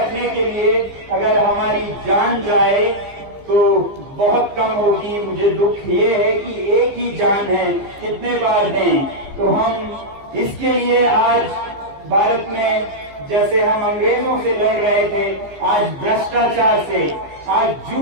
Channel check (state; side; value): late; left; 15 ms